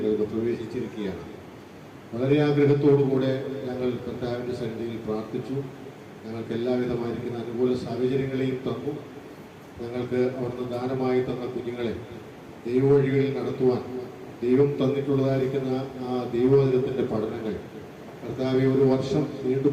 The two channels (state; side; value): identical; both; correlation 1.00